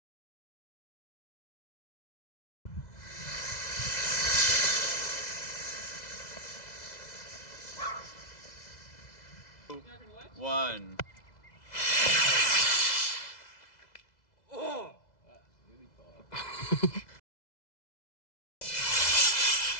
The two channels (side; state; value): right; late; 2.0 ms